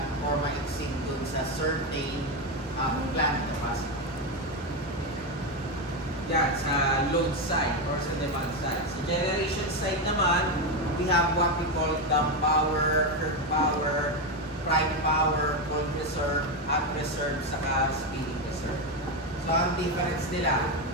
or ma-exceed dun sa certain plant capacity. Yan, sa load side or sa demand side. Sa generation side naman, we have what we call dump power, curve power, prime power, cold reserve, hot reserve, saka speeding reserve. So, ang difference nila,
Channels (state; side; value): normal; both; correlation 0.10